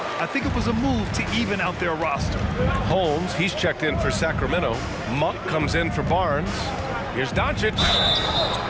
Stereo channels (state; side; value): identical; both; correlation 1.00